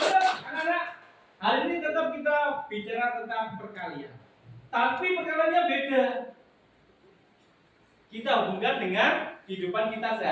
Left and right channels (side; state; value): both; identical; correlation 1.00